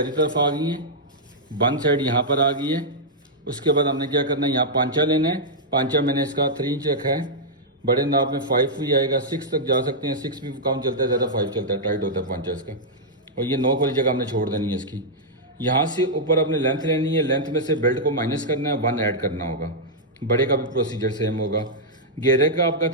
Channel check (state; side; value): normal; both; correlation -0.08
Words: तरफ आ गई है, बंद साइड यहाँ पर आ गई है। उसके बाद हमने क्या करना है, यहाँ पांचा लेना है। पांचा मैंने इसका 3 इंच रखा है। बड़े नाप में 5 भी आएगा, 6 तक जा सकते हैं। 6 भी कम चलता है, ज़्यादा 5 चलता है, टाइट होता है पांचा इसका। और ये नोक वाली जगह हमने छोड़ देनी है इसकी। यहाँ से ऊपर अपने लेंथ लेनी है, लेंथ में से बेल्ट को माइनस करना है, 1 ऐड करना होगा। बड़े का भी प्रोसीजर सेम होगा। घेरे का आपका